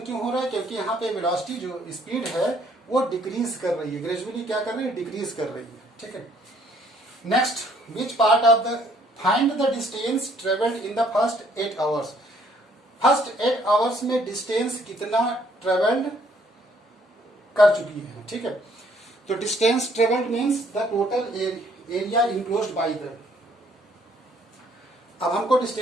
क्यों हो रहा है? क्योंकि यहाँ पे वेलोसिटी जो स्पीड है वो डिक्रीज कर रही है, ग्रेजुअली क्या कर रही है? डिक्रीज कर रही है, ठीक है। Next, which part of the find the distance travelled in the first 8 hours? First 8 hours में डिस्टेंस कितना ट्रेवल्ड कर चुकी है, ठीक है। तो distance travelled means the total area enclosed by the. अब हमको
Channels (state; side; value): normal; both; correlation 0.64